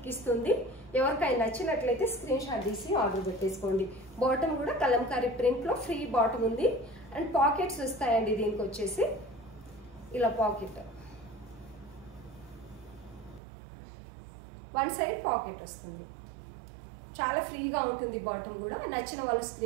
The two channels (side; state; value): left; drops out; at 13.4 s